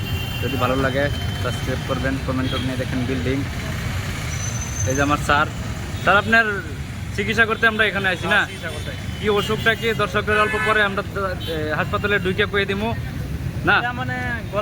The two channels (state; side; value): identical; both; correlation 1.00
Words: যদি ভালো লাগে সাবস্ক্রাইব করবেন, কমেন্ট নিয়ে দেখেন বিল্ডিং। এই যে আমার স্যার আপনার চিকিৎসা করতে আমরা এখানে আছি না? কি অসুখটা কি দর্শকদের অল্প পরে আমরা হাসপাতালে ঢুকে কয়ে দিব না? মানে